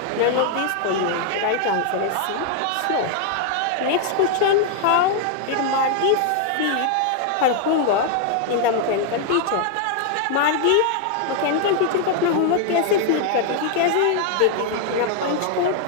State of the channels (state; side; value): different; both; correlation 0.00